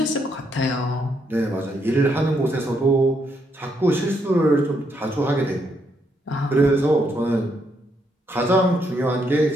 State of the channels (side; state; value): both; normal; correlation 0.76